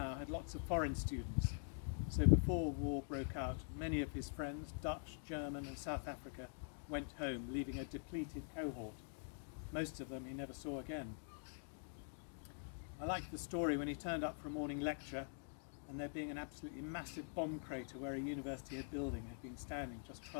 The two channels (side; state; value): right; silent; digital silence